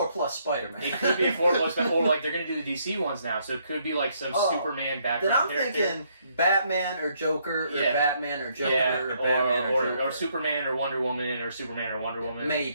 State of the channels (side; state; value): both; inverted; correlation -0.71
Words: plus Spider-Man. It could be a 4 plus, or like they're going to do the DC ones now, so it could be like some Superman Then background I'm character. thinking Batman or Joker or Yeah. Batman or Joker Yeah, or Batman or Joker. or Superman or Wonder Woman or Superman or Wonder Woman.